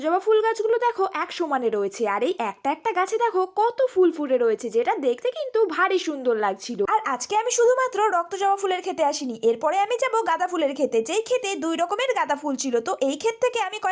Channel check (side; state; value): both; identical; correlation 1.00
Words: ফুল গাছগুলো দেখো এক সমানে রয়েছে, আর এই একটা একটা গাছে দেখো কত ফুল ফুটে রয়েছে, যেটা দেখতে কিন্তু ভারী সুন্দর লাগছিল। আর আজকে আমি শুধুমাত্র রক্তজবা ফুলের ক্ষেতে আসিনি, এরপরে আমি যাব গাঁদা ফুলের ক্ষেতে, যেই ক্ষেতে দুই রকমের গাঁদা ফুল ছিল। তো এই ক্ষেত থেকে আমি